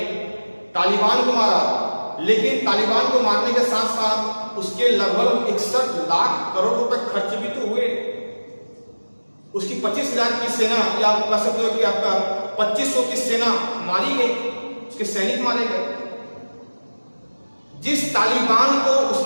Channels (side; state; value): both; inverted; correlation -1.00